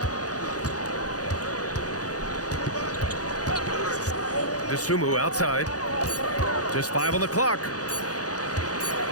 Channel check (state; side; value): late; right; 0.67 ms